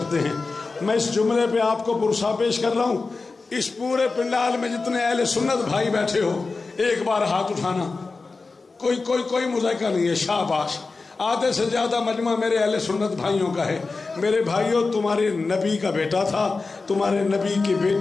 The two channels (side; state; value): right; quieter; 4.0 dB